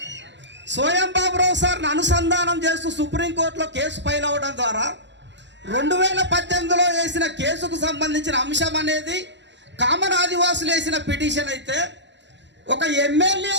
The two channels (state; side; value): late; left; 0.52 ms